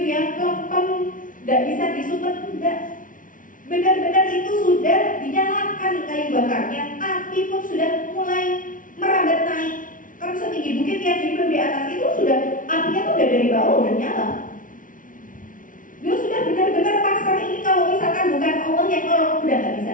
ya, lempem, nggak bisa disumet, enggak. Benar-benar itu sudah dinyalakan kayu bakarnya, api pun sudah Allah udah nyala. Dia sudah benar-benar pasrah ini, kalau misalkan bukan Allah yang nolong udah nggak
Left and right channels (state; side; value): late; right; 0.38 ms